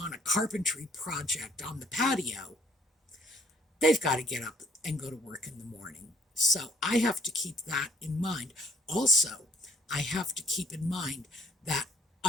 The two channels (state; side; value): normal; both; correlation 0.61